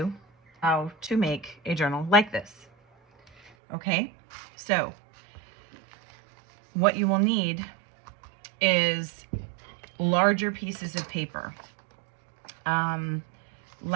how to make a journal like this. Okay, so what you will need is larger pieces of paper,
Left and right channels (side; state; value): left; drops out; at 3.5 s